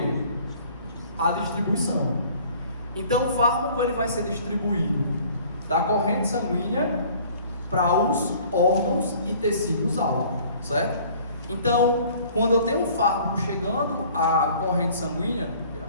A distribuição. Então o fármaco ele vai ser distribuído da corrente sanguínea para os órgãos e tecidos alvo, certo? Então, quando eu tenho um fármaco chegando à corrente sanguínea,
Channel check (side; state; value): both; inverted; correlation -0.52